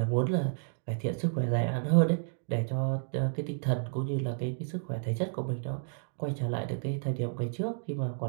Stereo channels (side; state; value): left; silent; digital silence